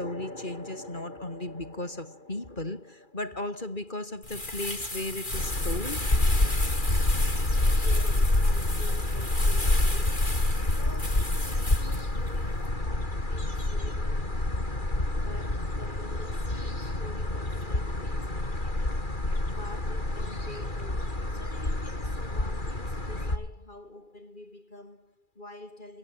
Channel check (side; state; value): right; late; 2.4 ms